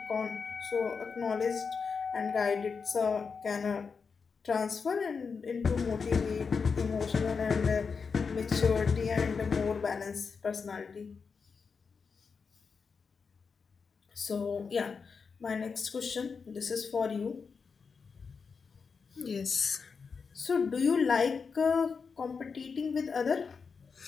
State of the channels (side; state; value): right; quieter; 5.4 dB